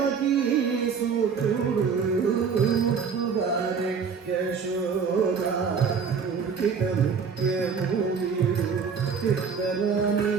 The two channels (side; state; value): left; quieter; 6.0 dB